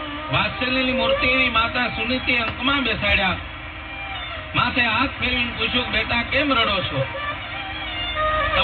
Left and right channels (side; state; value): both; identical; correlation 1.00